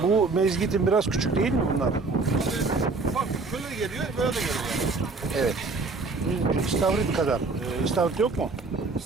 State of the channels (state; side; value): quieter; left; 3.8 dB